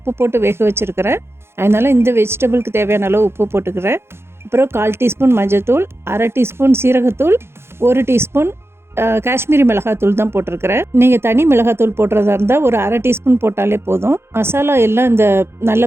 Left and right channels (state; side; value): late; left; 0.12 ms